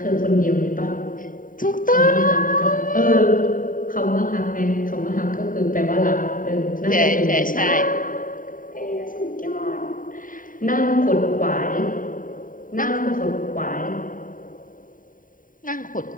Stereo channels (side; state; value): right; late; 0.39 ms